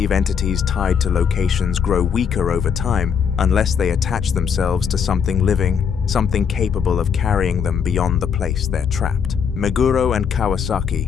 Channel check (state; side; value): quieter; right; 7.0 dB